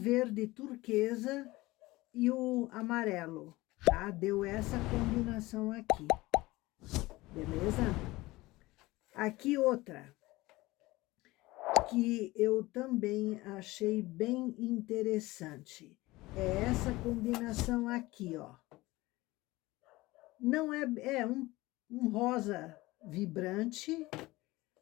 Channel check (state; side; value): quieter; right; 19.9 dB